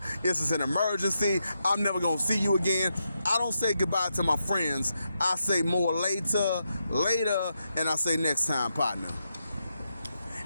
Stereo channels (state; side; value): inverted; both; correlation -0.85